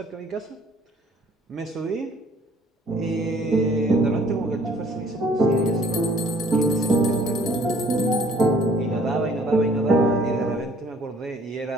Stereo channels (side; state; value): both; normal; correlation 0.58